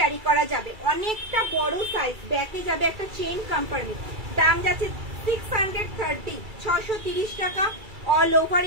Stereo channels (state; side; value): late; left; 2.3 ms